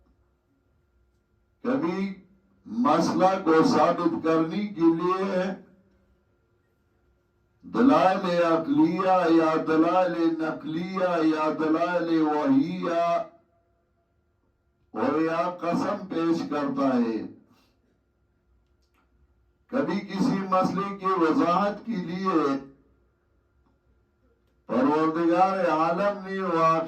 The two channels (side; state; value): both; identical; correlation 1.00